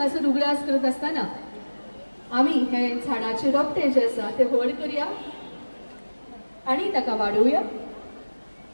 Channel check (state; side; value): inverted; both; correlation -1.00